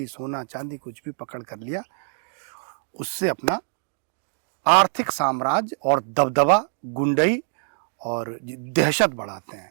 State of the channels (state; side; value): silent; left; digital silence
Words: सोना चांदी कुछ भी पकड़ कर लिया, उससे अपना आर्थिक साम्राज्य और दबदबा, गुंडई और दहशत बढ़ाते